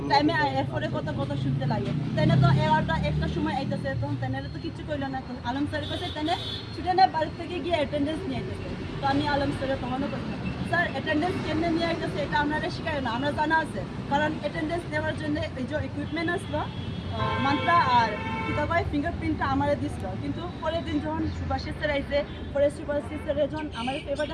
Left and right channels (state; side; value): identical; both; correlation 1.00